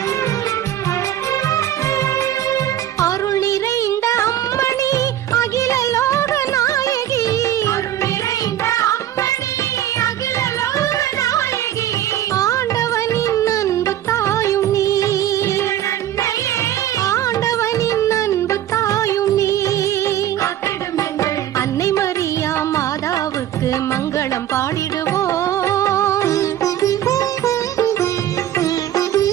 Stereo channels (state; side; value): quieter; left; 12.1 dB